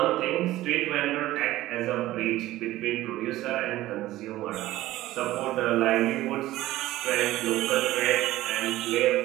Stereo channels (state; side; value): quieter; left; 16.0 dB